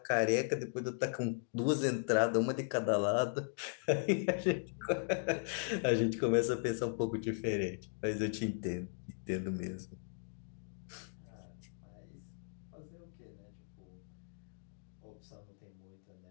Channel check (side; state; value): right; silent; digital silence